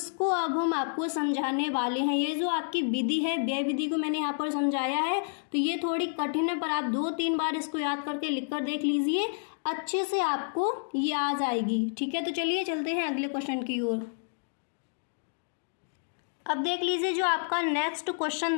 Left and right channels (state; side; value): silent; right; digital silence